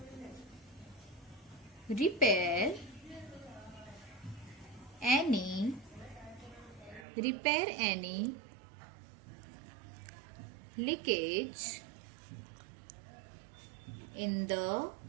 repair any leakage in the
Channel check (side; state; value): left; drops out; at 7.1 s